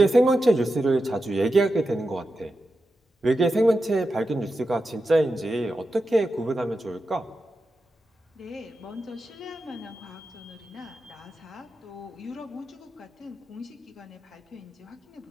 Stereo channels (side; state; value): both; normal; correlation 0.90